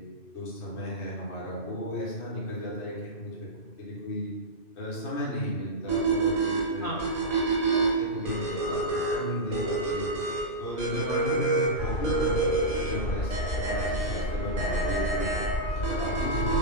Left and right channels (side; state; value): right; late; 2.6 ms